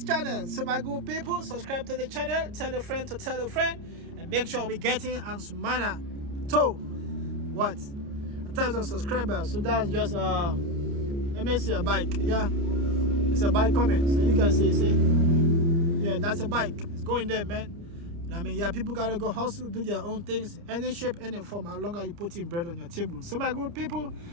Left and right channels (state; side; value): late; left; 29 ms